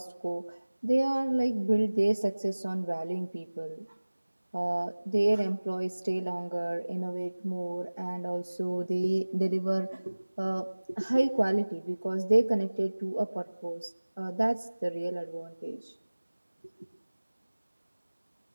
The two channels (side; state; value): both; inverted; correlation -1.00